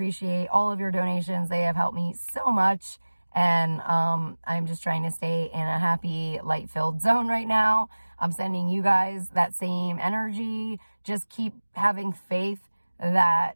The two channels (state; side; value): inverted; both; correlation -1.00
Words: all of your donations. They have helped me so much. And I'm just trying to stay in a happy, light-filled zone right now. I'm sending you guys that same energy. Just keep having faith